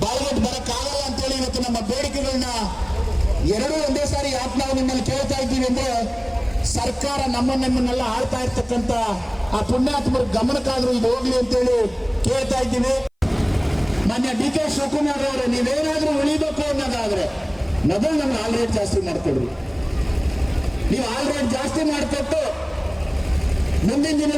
ಬಾಯಿಗೆಟ್ ಬರಕ್ಕಾಗಲ್ಲ ಅಂತೇಳಿ ಇವತ್ತು ನಮ್ಮ ಬೇಡಿಕೆಗಳನ್ನ ಎರಡೂ ಒಂದೇ ಸಾರಿ ಯಾಕೆ ನಾವು ನಿಮ್ಮಲ್ಲಿ ಕೇಳ್ತಾ ಇದ್ದೀವಿ ಅಂದ್ರೆ, ಸರ್ಕಾರ ನಮ್ಮನ್ನೆಲ್ಲ ಆಳ್ತಾ ಇರ್ತಕ್ಕಂಥ ಆ ಪುಣ್ಯಾತ್ಮರ ಗಮನಕ್ಕಾದ್ರೂ ಇದು ಹೋಗ್ಲಿ ಅಂತೇಳಿ ಕೇಳ್ತಾ ಇದ್ದೀವಿ. ಮಾನ್ಯ ಡಿ.ಕೆ. ಶಿವಕುಮಾರ್ ಅವರೇ, ನೀವೇನಾದ್ರೂ ಉಳಿಬೇಕು ಅನ್ನೋದಾದ್ರೆ ಮೊದಲು ನಮ್ಗೆ ಹಾಲ್ ರೇಟ್ ಜಾಸ್ತಿ ಮಾಡ್ಕೊಡ್ರಿ. ನೀವು ಹಾಲ್ ರೇಟ್ ಜಾಸ್ತಿ ಮಾಡಿಕೊಟ್ಟು ಮುಂದಿನ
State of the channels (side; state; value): both; identical; correlation 1.00